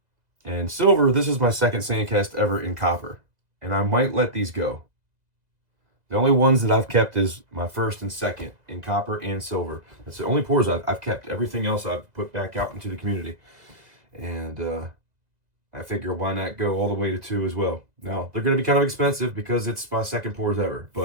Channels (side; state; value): left; late; 2.0 ms